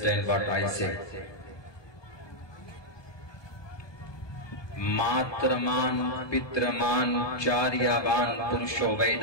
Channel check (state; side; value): late; right; 1.2 ms